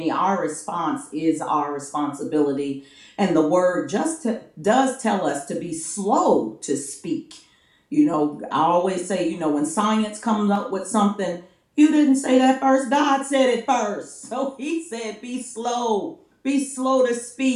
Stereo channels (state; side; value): identical; both; correlation 1.00